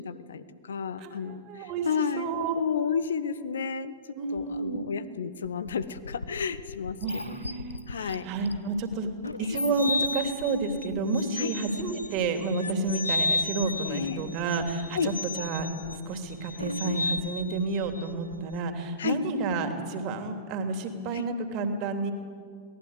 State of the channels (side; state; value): both; inverted; correlation -0.46